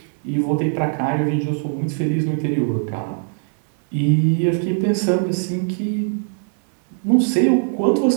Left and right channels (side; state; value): left; silent; digital silence